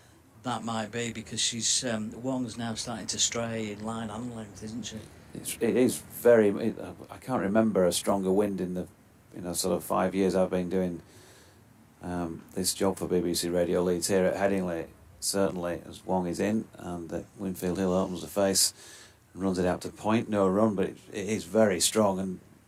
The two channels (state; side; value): identical; both; correlation 1.00